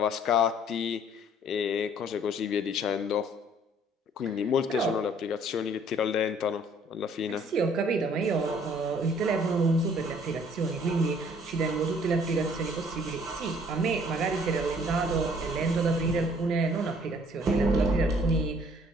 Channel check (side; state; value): both; normal; correlation 0.58